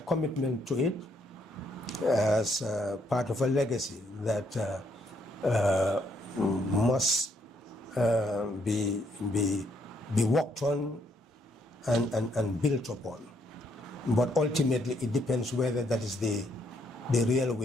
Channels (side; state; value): both; normal; correlation 0.73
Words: to it as part of a legacy that must be worked on and built upon. But ultimately, it depends whether that is the real